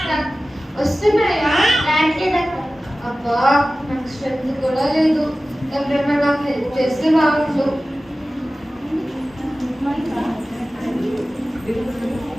వస్తున్నాయా? అబ్బా నాకు స్ట్రెంత్ కూడా లేదు. ఎవరైనా నాకు హెల్ప్ చేస్తే బాగుండు.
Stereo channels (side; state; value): both; normal; correlation 0.96